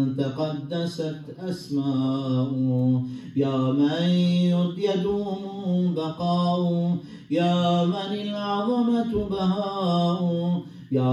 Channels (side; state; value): both; identical; correlation 1.00